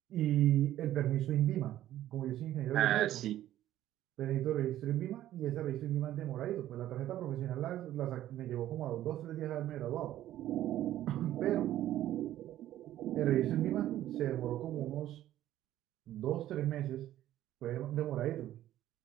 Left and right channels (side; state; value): left; quieter; 13.1 dB